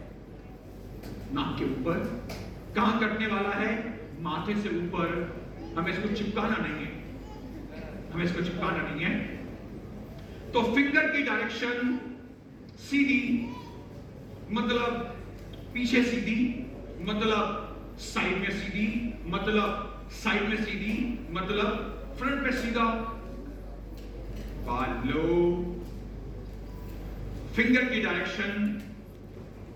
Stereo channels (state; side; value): identical; both; correlation 1.00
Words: नाक के ऊपर। कहां कटने वाला है, माथे से ऊपर। हमें इसको चिपकाना नहीं है, तो फिंगर की डायरेक्शन सीधी, मतलब पीछे सीधी, मतलब साइड में सीधी, मतलब साइड में सीधी, मतलब फ्रंट पे सीधा। बाल लो, फिंगर की डायरेक्शन